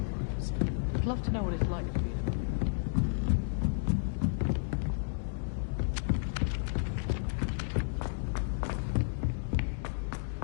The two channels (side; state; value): right; silent; digital silence